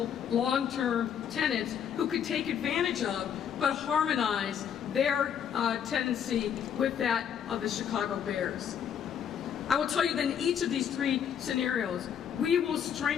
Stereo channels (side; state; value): right; quieter; 8.4 dB